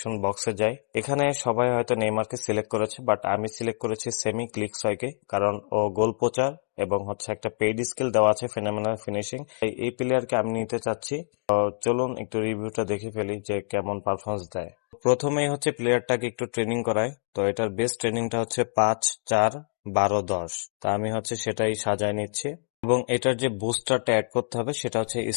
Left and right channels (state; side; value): silent; right; digital silence